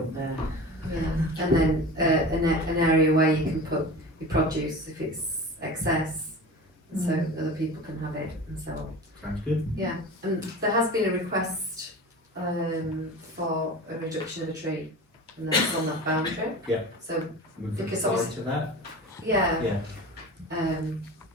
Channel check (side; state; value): both; normal; correlation 0.33